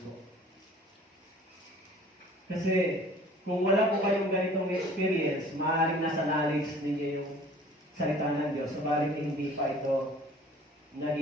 Kasi kung wala po kayong ganitong experience, maaaring nasa knowledge ninyo yung salita ng Diyos, subalit hindi pa ito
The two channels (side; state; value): both; normal; correlation 0.50